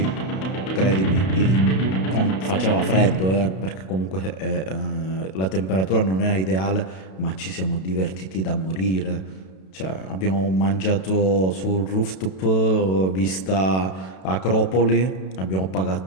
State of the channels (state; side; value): late; right; 32 ms